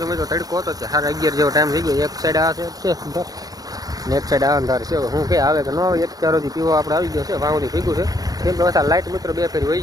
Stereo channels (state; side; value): late; left; 0.18 ms